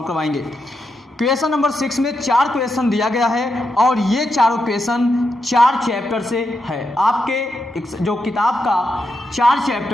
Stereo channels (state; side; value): normal; both; correlation 0.84